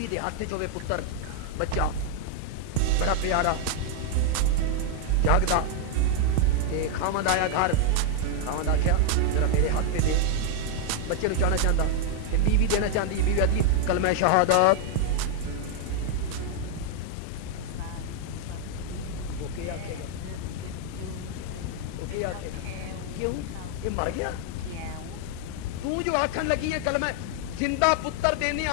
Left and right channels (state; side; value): different; both; correlation 0.00